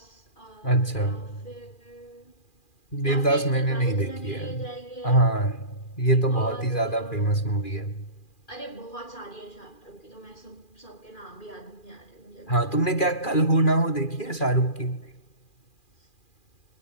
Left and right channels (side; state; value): right; late; 2.4 ms